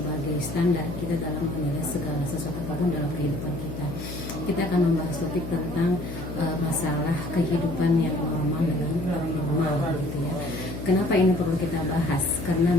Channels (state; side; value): noise; left; hum, 8 dB below the sound